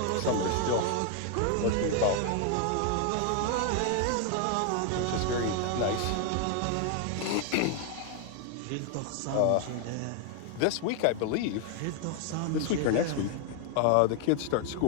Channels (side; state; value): both; different; correlation 0.00